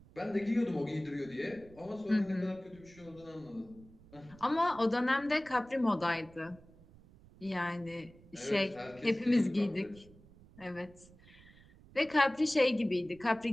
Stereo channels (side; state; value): right; noise; rumble, 23 dB below the sound